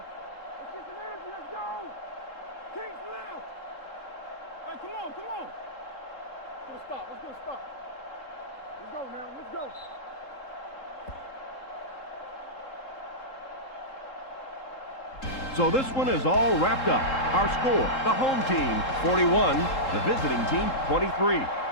let's go! King's left! Hey, come on. Let's get a stop. Let's go now, let's go. So this one is all wrapped up. Our score, the home team 41, the visiting team 23.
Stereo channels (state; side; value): late; right; 3.7 ms